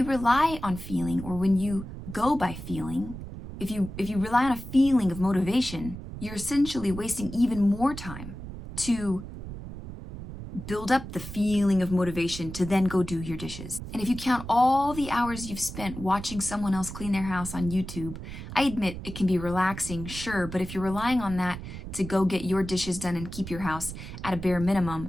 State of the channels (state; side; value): noise; right; rumble, 10 dB below the sound